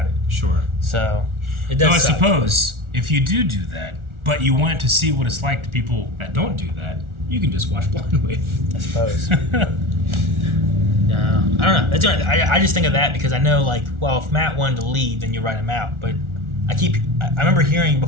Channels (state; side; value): late; left; 1.4 ms